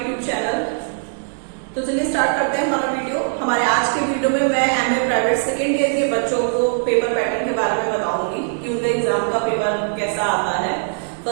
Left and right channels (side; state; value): left; silent; digital silence